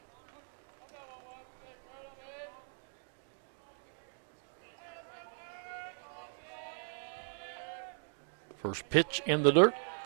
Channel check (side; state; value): left; silent; 52 dB below the other